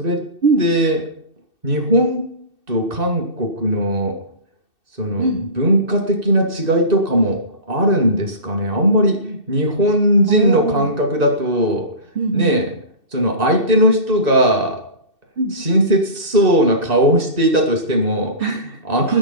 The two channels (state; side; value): late; left; 2.6 ms